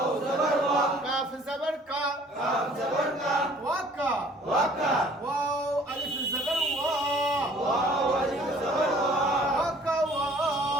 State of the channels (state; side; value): normal; both; correlation 0.54